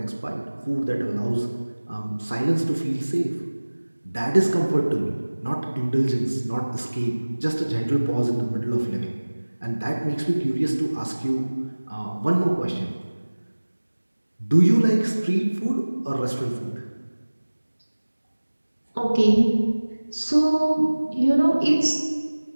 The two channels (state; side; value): inverted; both; correlation -1.00